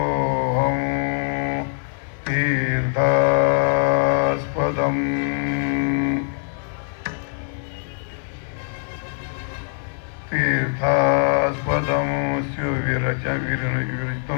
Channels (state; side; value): silent; right; 64 dB below the other